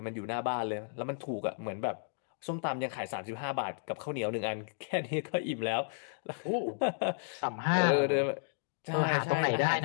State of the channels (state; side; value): silent; right; digital silence